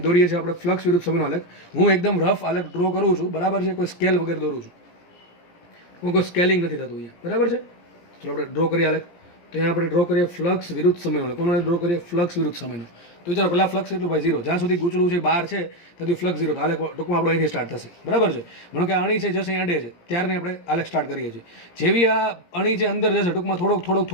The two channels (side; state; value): right; late; 17 ms